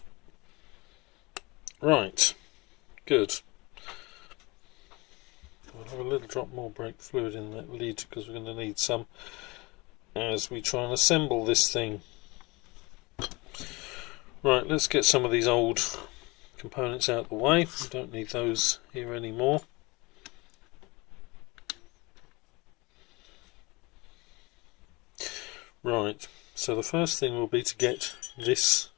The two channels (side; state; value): right; quieter; 24.7 dB